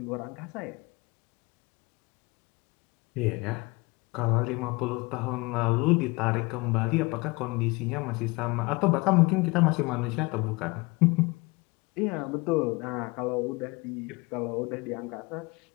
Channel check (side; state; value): right; quieter; 25.2 dB